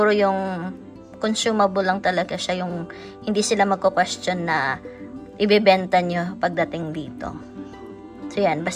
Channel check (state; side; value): identical; both; correlation 1.00